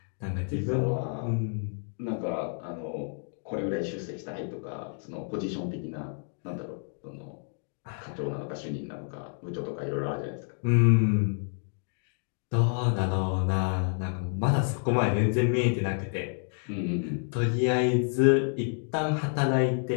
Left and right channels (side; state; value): right; silent; 55 dB below the other